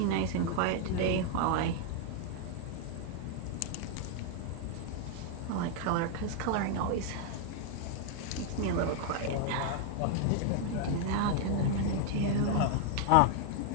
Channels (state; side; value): different; both; correlation 0.00